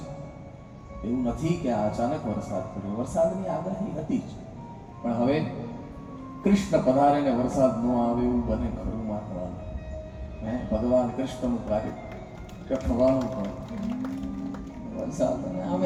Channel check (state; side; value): identical; both; correlation 1.00